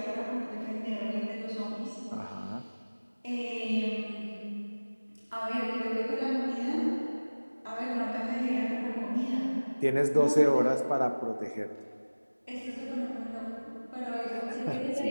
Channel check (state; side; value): inverted; both; correlation -1.00